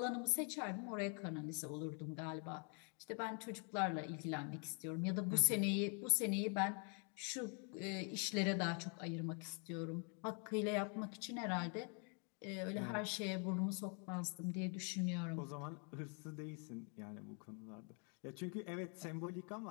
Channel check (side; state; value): right; quieter; 38.7 dB